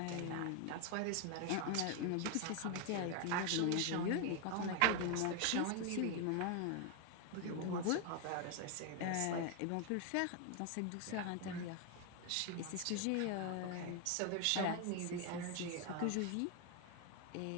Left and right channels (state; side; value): different; both; correlation 0.01